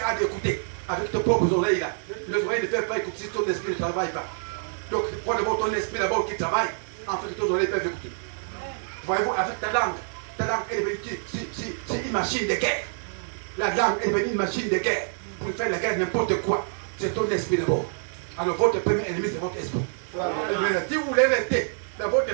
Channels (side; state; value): left; silent; digital silence